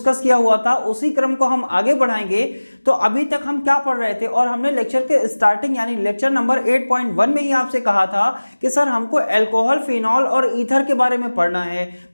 किया हुआ था, उसी क्रम को हम आगे बढ़ाएंगे। तो अभी तक हम क्या पढ़ रहे थे और हमने लेक्चर के स्टार्टिंग यानी लेक्चर नंबर 8.1 में ही आपसे कहा था कि सर हमको अल्कोहल, फिनॉल और ईथर के बारे में पढ़ना है।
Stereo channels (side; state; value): both; inverted; correlation -1.00